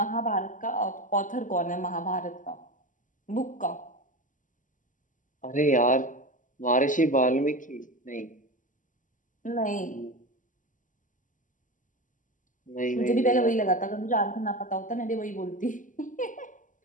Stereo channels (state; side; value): late; right; 0.38 ms